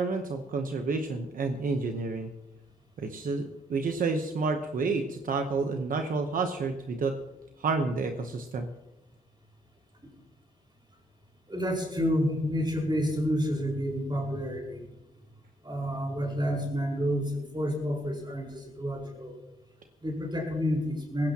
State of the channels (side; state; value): both; normal; correlation 0.70